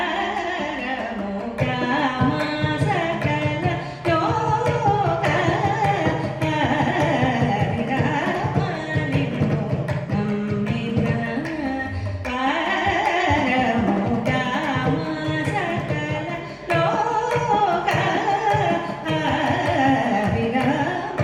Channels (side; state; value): both; identical; correlation 1.00